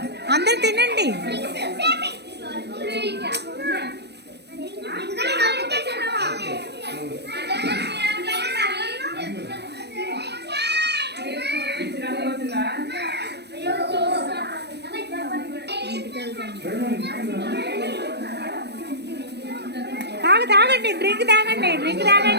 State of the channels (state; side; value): late; left; 0.49 ms